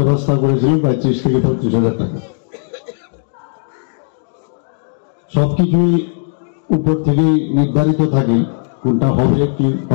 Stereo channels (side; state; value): right; silent; digital silence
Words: করেছিলেন প্রায় 30 থেকে 35,000 টাকা সবকিছুই উপর থেকেই নির্ধারিত থাকে কোনটা হবে কি